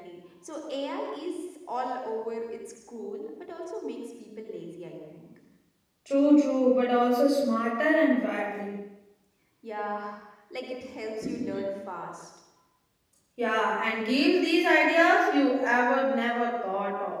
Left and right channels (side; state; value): both; identical; correlation 1.00